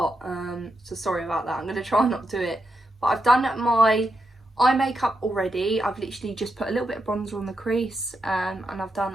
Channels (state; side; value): normal; both; correlation 0.84